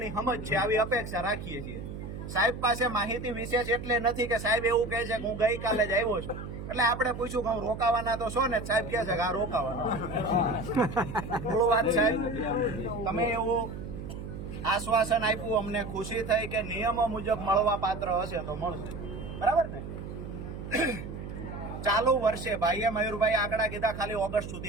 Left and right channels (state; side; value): noise; right; hum, 9 dB below the sound